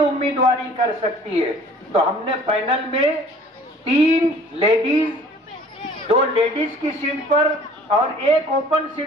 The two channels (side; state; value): both; normal; correlation 0.51